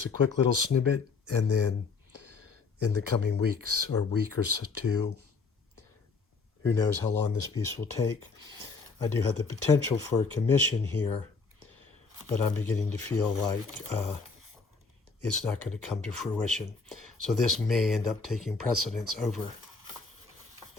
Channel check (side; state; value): right; quieter; 4.6 dB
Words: a quick little snippet, and then in the coming weeks or week or two, who knows how long this piece will take. I do have the potential for a commission here, but I'm beginning to feel like it's not going to come to fruition. So this may end up taking precedence over